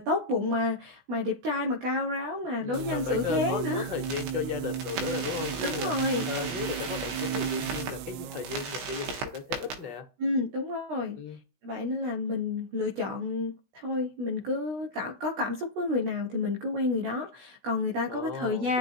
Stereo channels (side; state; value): left; late; 16 ms